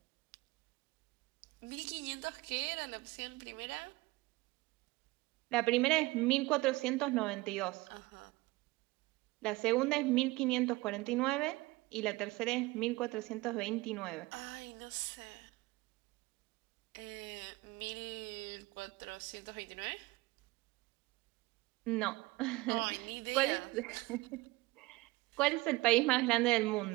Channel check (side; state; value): left; quieter; 21.3 dB